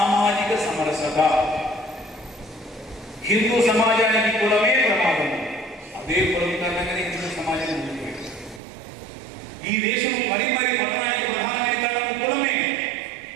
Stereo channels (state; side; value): drops out; left; at 8.6 s